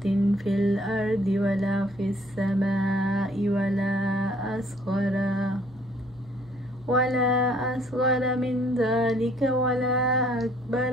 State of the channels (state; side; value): noise; right; hum, 25 dB below the sound